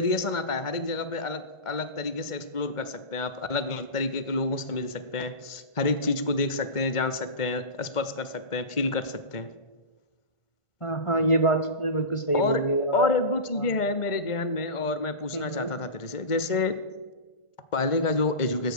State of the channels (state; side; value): late; right; 1.5 ms